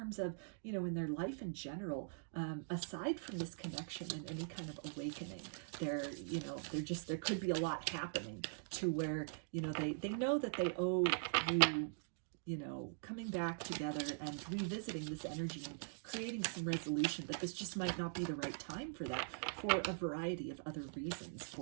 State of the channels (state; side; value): silent; left; digital silence